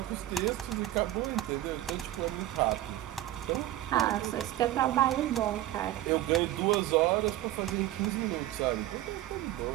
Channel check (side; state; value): left; quieter; 14.5 dB